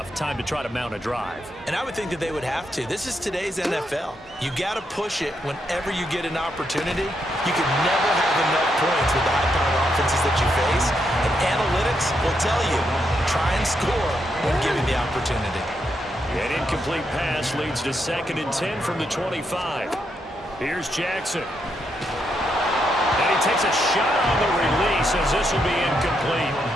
Time to try to mount a drive. And I would think that they would have to. This is today's NFL. You got to push it whenever you get an opportunity. You can never have enough points with the high-powered offenses that you face. And analytics will tell you, try and score when given the opportunity. An incomplete pass leads to 2nd and 10 from the 25. Here's Jackson. And he takes a shot on the release as this will be incomplete.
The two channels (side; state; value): both; normal; correlation 0.80